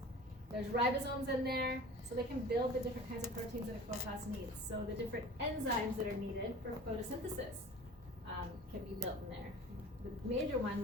There's ribosomes in there, so they can build the different kinds of proteins that a chloroplast needs. So the different enzymes that are needed for photosynthesis can be built in there. The major one,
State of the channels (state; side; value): normal; both; correlation 0.40